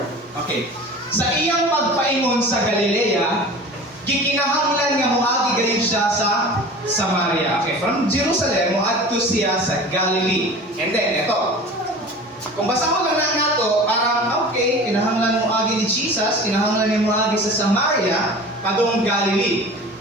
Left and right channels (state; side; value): normal; both; correlation 0.39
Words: Okay. Sa iyang pagpaingon sa Galilea, gikinahanglan nga moagi gayon siya sa Samaria. Okay, from Jerusalem moadto siya sa Galilee. And then ito. Kung basa mo lang na to, parang okay, kinahanglan moagi ni Jesus, kinahanglan niya moagi sa Samaria padung Galilee.